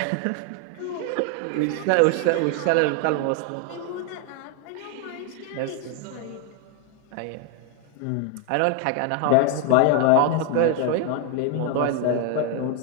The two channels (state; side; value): different; both; correlation 0.00